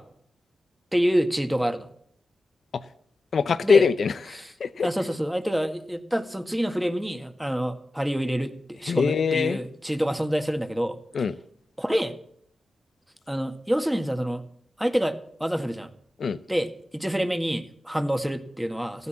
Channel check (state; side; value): normal; both; correlation 0.94